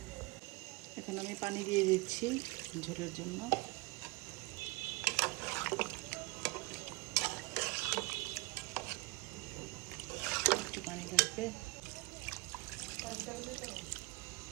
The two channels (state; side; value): quieter; left; 24.1 dB